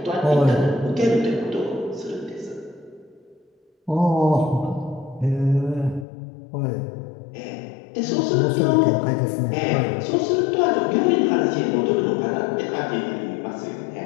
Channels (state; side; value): drops out; right; at 6.1 s